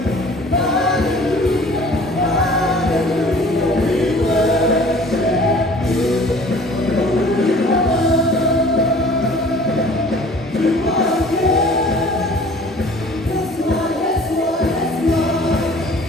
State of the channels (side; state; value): both; normal; correlation 0.49